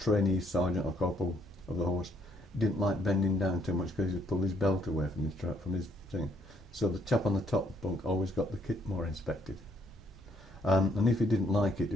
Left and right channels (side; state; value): both; normal; correlation 0.69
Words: sergeant or corporal of the horse didn't like bending down too much because he'd pull his belt away from his thing. So the chap on the top bunk always got the kit more inspected. And if he didn't like it,